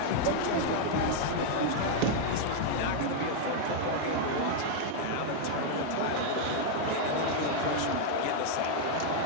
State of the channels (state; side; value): different; both; correlation 0.00